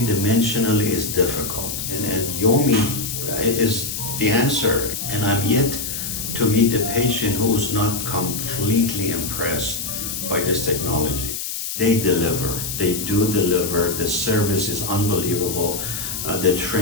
is difficult, and Yomi is the answer. And I'm yet to meet a patient who's not completely impressed by this technology. They deliver. They do deliver. The service is unbelievable. The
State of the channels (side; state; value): left; noise; hiss, 5 dB below the sound